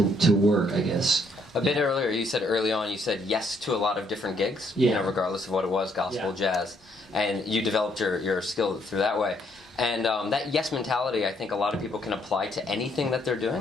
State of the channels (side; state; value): both; normal; correlation 0.70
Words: work, I guess. A bit earlier, you said yes to a lot of different gigs, yeah. regardless of what it was, gospel, jazz, and you developed your skill through that way. And that yes mentality, I think a lot of people can apply to anything that they're